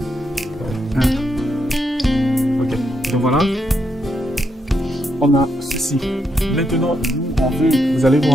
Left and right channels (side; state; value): both; normal; correlation 0.80